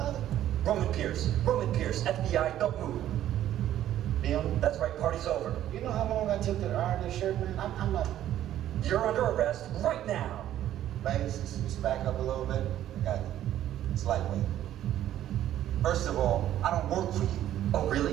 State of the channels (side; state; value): left; quieter; 12.2 dB